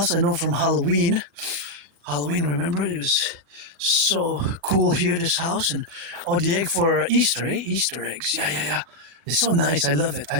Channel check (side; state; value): left; late; 40 ms